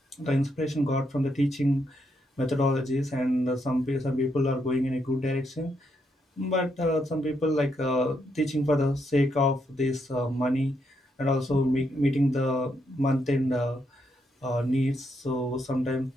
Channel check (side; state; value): both; normal; correlation 0.78